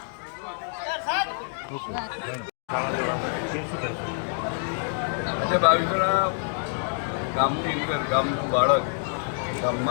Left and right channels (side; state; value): right; silent; 60 dB below the other